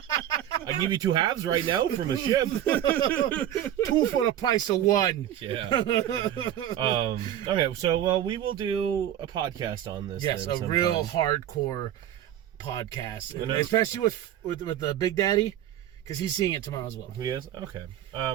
I give you 2 halves right now from a ship. 2 for the price of 1. Yeah. Okay, so we will do a podcast on this. Yes, a real hardcore podcast, especially with the Big Daddy, because he's seeing it tomorrow as well. He is? Okay.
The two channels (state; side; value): quieter; left; 11.5 dB